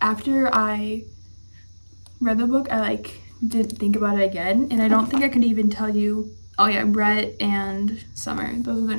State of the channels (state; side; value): inverted; both; correlation -1.00